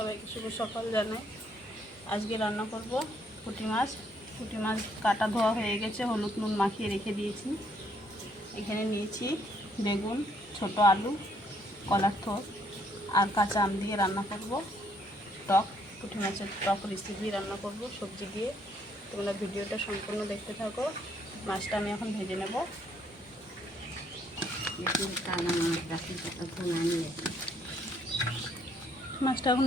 শুভ সকাল জানাই। আজকে রান্না করব পুঁটি মাছ। পুঁটি মাছ কাটা ধোয়া হয়ে গেছে, হলুদ নুন মাখিয়ে রেখে দিয়েছি। এখানে নিয়েছি বেগুন, ছোট আলু, কলার থোড় আর কাঁচা আম দিয়ে রান্না করব টক। পুঁটি মাছের টক রেসিপি রান্না করব সবজি দিয়ে। তোমরা ভিডিওটা সম্পূর্ণ দেখতে থাকো। মাছটা আমি এখন ভেজে নেব। মাছটা এখন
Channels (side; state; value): both; normal; correlation 0.69